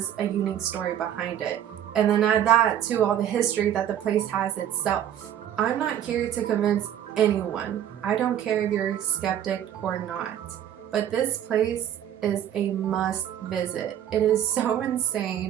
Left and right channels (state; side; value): quieter; left; 10.4 dB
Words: a unique story behind it. And then add that to all the history that the place has itself. I'm not here to convince anyone. I don't care if you're a skeptic or not. But this place is a must visit. It is so